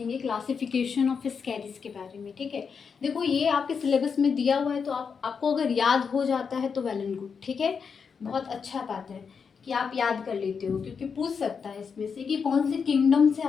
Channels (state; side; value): quieter; right; 6.0 dB